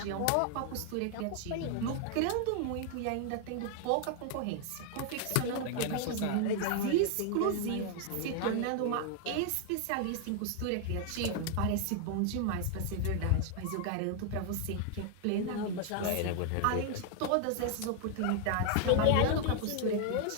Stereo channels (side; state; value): both; different; correlation 0.00